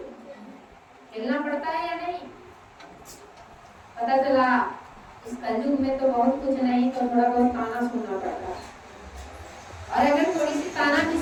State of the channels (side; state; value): both; identical; correlation 1.00